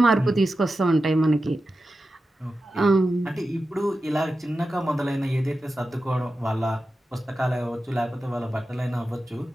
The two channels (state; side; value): normal; both; correlation 0.92